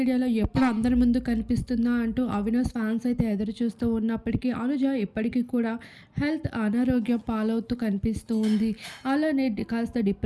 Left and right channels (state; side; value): identical; both; correlation 1.00